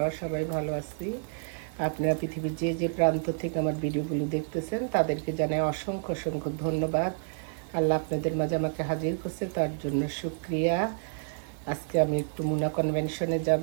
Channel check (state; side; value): silent; left; 56 dB below the other